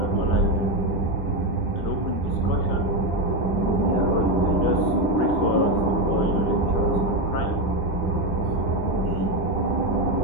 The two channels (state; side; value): late; right; 9.9 ms